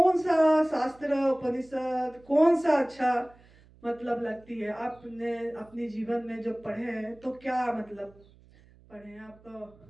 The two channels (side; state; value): right; noise; hum, 27 dB below the sound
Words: सा शास्त्र उपनिषद कौन सा अच्छा मतलब लगती है? आपने अपने जीवन में जो पढ़े हैं तो क्या मतलब पढ़े हैं